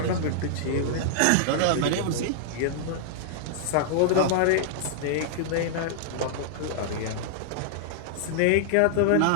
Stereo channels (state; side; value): different; both; correlation -0.01